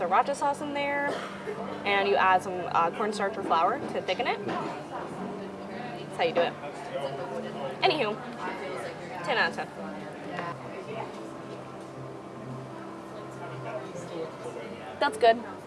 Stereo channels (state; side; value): identical; both; correlation 1.00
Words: sauce in there. And you add some cornstarch or flour to thicken it. That's how you do it. Anywho, 10 out of 10. That's good.